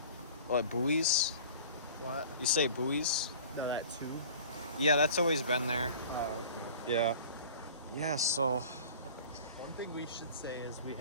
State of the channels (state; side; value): inverted; both; correlation -0.44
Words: What, buoys? What? You say buoys? No, that two? Yeah, that's always been there. Oh, okay. Yeah. Yeah, so One thing we should say is we